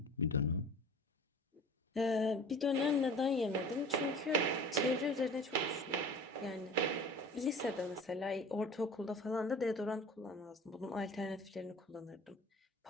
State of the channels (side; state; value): both; normal; correlation 0.41